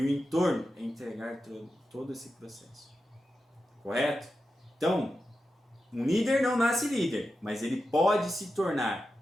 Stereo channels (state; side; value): normal; both; correlation 0.90